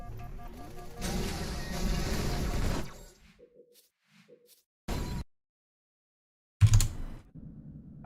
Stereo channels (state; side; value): identical; both; correlation 1.00